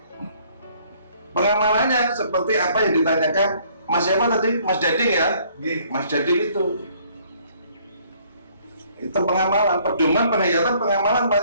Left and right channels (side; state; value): both; inverted; correlation -0.62